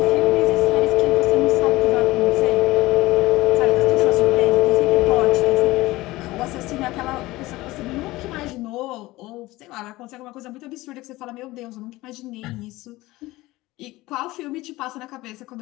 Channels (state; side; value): quieter; right; 19.0 dB